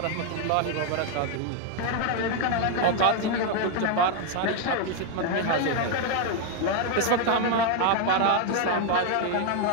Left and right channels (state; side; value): different; both; correlation 0.01